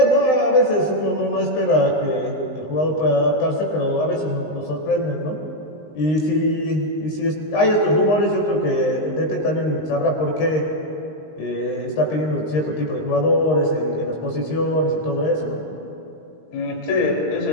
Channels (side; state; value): right; late; 19 ms